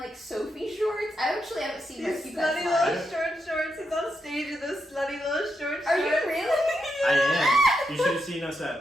Sophie shorts? I actually haven't seen These Rescue slutty Pets live. little shorts. He's on stage with those slutty little shorts. Are you really? I am. You should have seen us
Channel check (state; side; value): normal; both; correlation 0.84